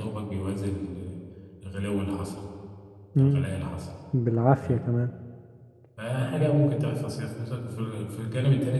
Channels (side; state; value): both; identical; correlation 1.00